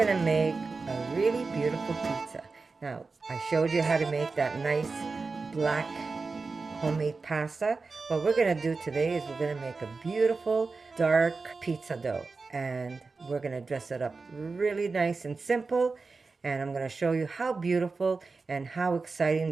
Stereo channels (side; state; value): left; quieter; 4.2 dB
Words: make a really beautiful pizza. Now, I showed you how to make that nice black homemade pasta. What we're gonna do today is we're gonna make a beautiful dark pizza dough. And we're gonna dress it up really nice and simple. And I'm gonna show you how beautiful and how exciting